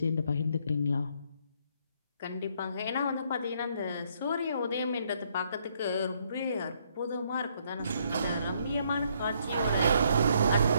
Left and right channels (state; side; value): inverted; both; correlation -0.69